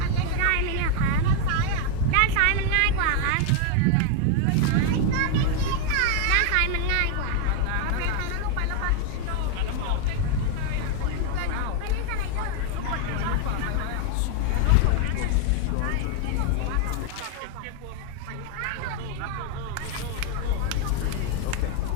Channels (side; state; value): both; different; correlation 0.01